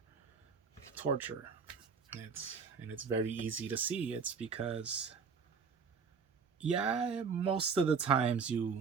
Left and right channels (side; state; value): left; quieter; 5.7 dB